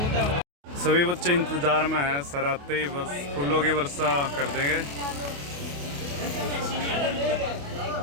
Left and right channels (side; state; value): left; late; 28 ms